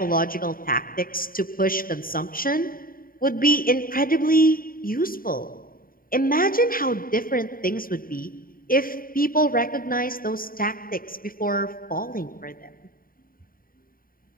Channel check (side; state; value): right; late; 0.41 ms